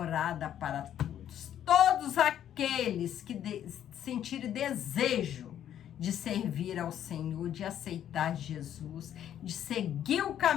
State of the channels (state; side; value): quieter; right; 10.5 dB